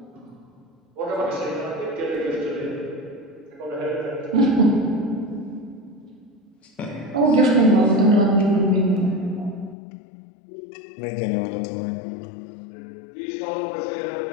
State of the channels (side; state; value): right; drops out; at 9.8 s